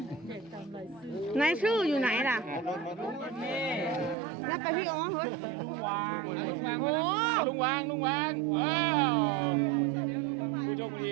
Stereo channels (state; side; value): drops out; left; at 4.2 s